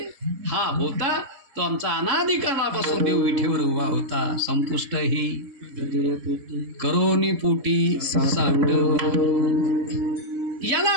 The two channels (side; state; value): left; late; 3.7 ms